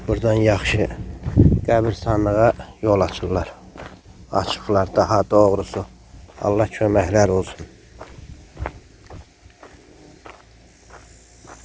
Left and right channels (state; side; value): identical; both; correlation 1.00